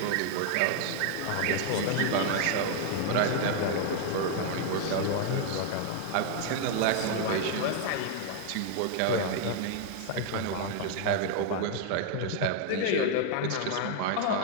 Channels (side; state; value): both; different; correlation 0.00